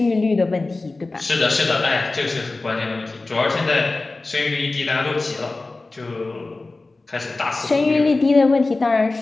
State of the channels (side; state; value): right; quieter; 3.3 dB